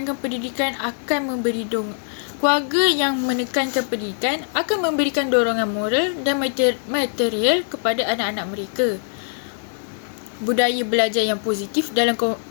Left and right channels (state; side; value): silent; right; digital silence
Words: pendidikan akan memberikan dorongan moral dan material kepada anak-anak mereka. Budaya belajar yang positif